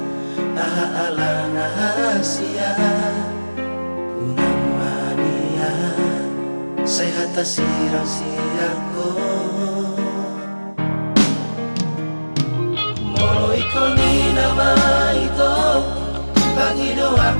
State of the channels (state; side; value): inverted; both; correlation -1.00